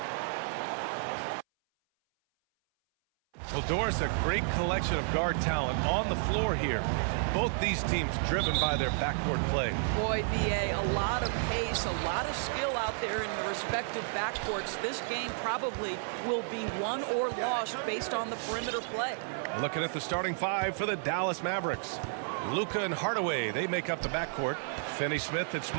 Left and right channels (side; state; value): left; silent; 57 dB below the other